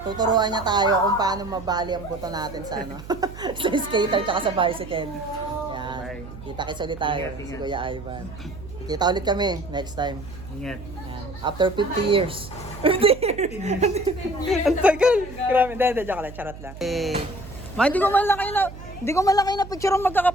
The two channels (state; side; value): noise; right; hum, 14 dB below the sound